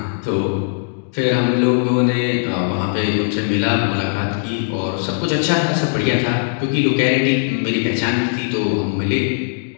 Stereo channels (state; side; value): silent; right; digital silence